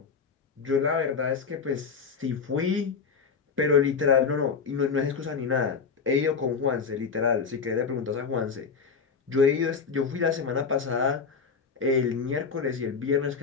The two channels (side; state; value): right; quieter; 5.5 dB